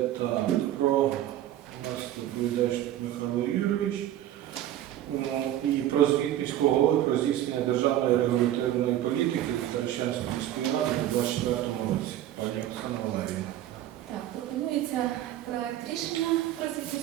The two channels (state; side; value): quieter; left; 12.7 dB